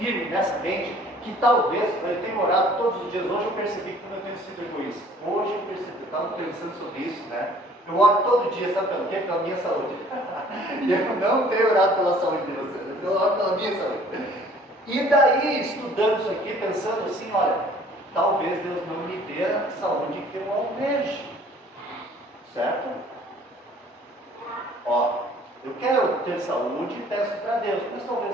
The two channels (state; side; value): normal; both; correlation 0.54